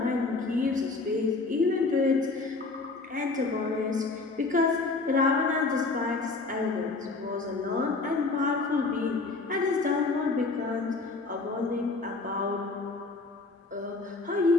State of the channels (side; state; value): right; quieter; 3.7 dB